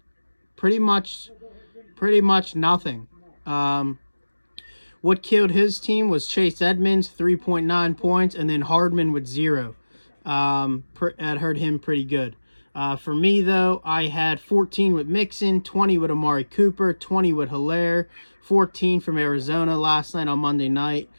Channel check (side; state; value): both; inverted; correlation -1.00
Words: pretty much nothing. What killed his team was Chase Edmonds, 3.9 points, and then Hardman with 0. That hurt him pretty good. For me, though, I had 14 with Mixon, 20 with Amari Cooper, 20 with Hilaire, 14 from Arizona last night on Monday night.